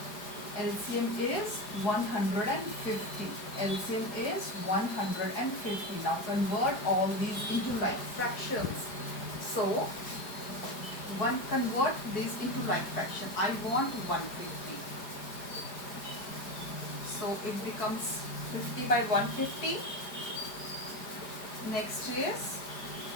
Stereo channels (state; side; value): late; right; 4.9 ms